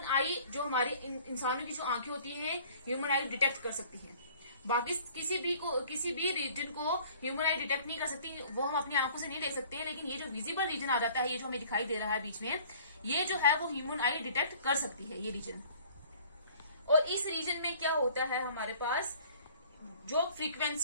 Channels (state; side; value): inverted; both; correlation -0.52